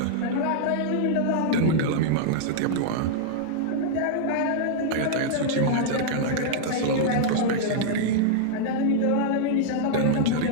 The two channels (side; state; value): both; different; correlation -0.01